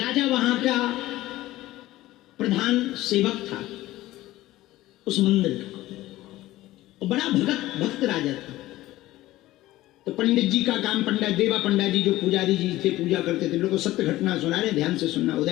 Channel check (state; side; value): quieter; right; 16.5 dB